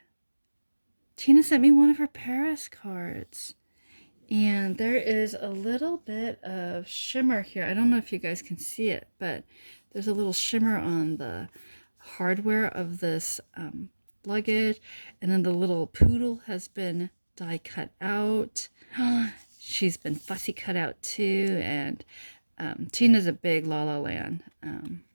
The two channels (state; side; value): inverted; both; correlation -1.00